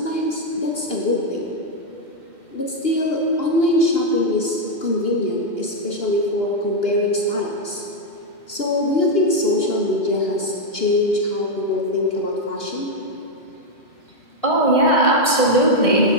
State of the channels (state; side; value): late; right; 2.8 ms